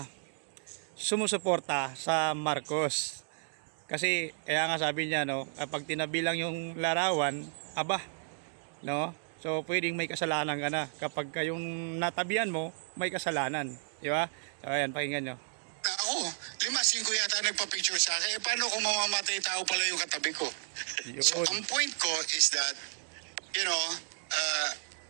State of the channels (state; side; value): silent; left; digital silence